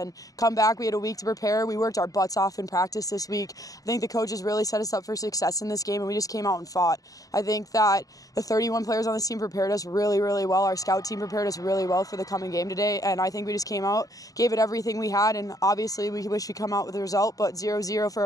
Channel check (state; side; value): late; right; 0.17 ms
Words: come back. We had a week to prepare. We worked our butts off in practice this week. I think the coaches really set us up for success in this game, and we just came out and fought. I think that the 31 players on this team prepared us really, really well. Our scout team prepared us really well for the coming game today, and I think we just came out, gave it everything we had, and obviously we wish we come out with a result, but 0-0 for